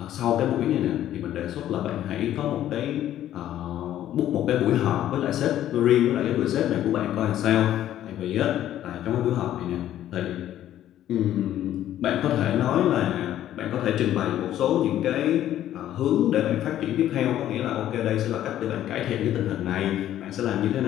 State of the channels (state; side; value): quieter; right; 12.1 dB